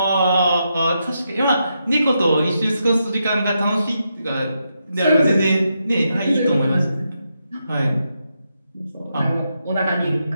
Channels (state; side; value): inverted; both; correlation -0.83